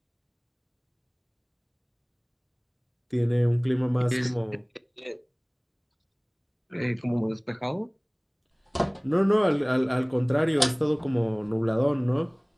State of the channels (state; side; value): identical; both; correlation 1.00